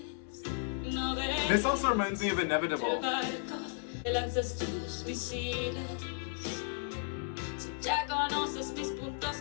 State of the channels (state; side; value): silent; right; 55 dB below the other